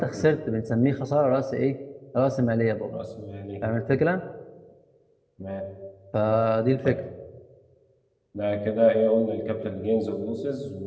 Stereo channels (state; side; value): identical; both; correlation 1.00